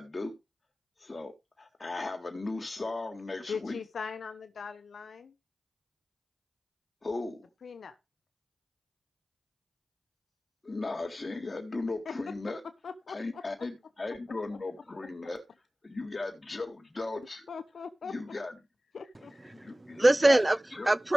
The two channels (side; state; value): both; normal; correlation 0.96